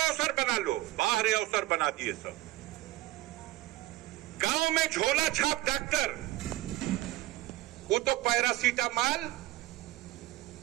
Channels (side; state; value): left; quieter; 17.4 dB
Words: बना लो। बाहर अवसर बना दिए सब। गांव में झोला छाप डॉक्टर, वो तो पैरासीटामॉल